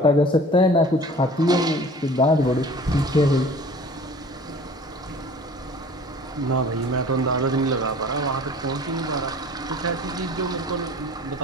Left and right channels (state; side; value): normal; both; correlation 0.46